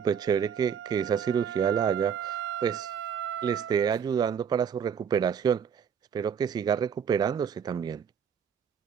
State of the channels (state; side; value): quieter; left; 7.5 dB